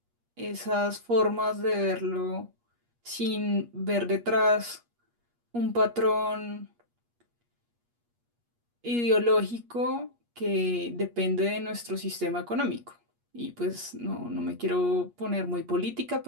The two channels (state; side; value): late; left; 8.4 ms